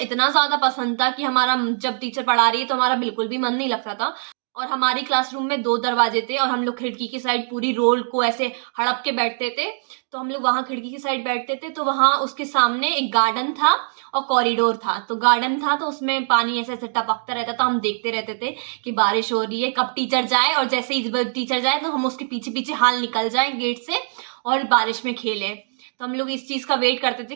ज्यादा पसंद था कि हमारा जब टीचर पढ़ा रही है तो हमारा बिल्कुल भी मन नहीं लगता था। और हमारी क्लासरूम में 2 दरवाजे थे और हम लोग खिड़की की साइड पूरी रोल को ऐसे हड़प के बैठते थे। तो हम लोग वहां खिड़की की साइड बैठते थे, तो वहां उसके सामने एक गार्डन था और कॉरिडोर था। तो गार्डन था तो उसमें पानी ऐसे ऐसे टपकता रहता था, हम देखते रहते थे कि बारिश हो रही है, कब टीचर जाए, और जैसे ही टीचर जाए तो हम उसके पीछे पीछे हाल निकल जाए गेट से और बारिश में खेले। तो हम लोग इस चीज का वेट करते थे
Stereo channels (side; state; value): left; silent; digital silence